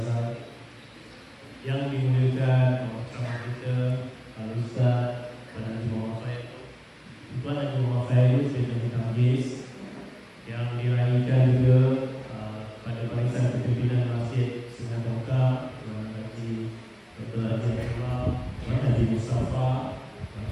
yang dimuliakan bersama kita Al-Ustaz Tuan Haji Muhammad Faid. Tuan Haji Muhammad Faid sebagai Majlis yang diraihkan juga pada barisan kepimpinan Masjid Sungai Tongkang, Tuan Haji Dr. Haji Abdullah, Tuan Haji Mustafa,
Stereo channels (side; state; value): both; identical; correlation 1.00